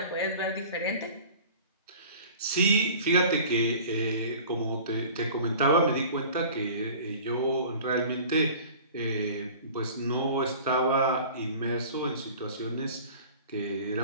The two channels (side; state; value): both; inverted; correlation -0.43